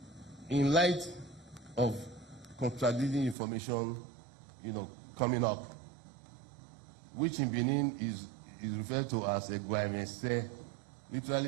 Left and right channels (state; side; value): drops out; left; at 3.4 s